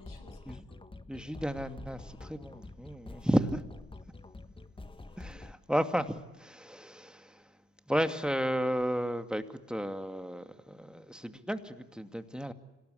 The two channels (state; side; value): normal; both; correlation 0.94